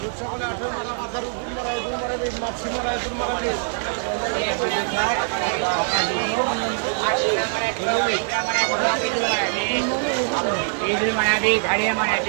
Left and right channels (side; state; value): left; silent; 63 dB below the other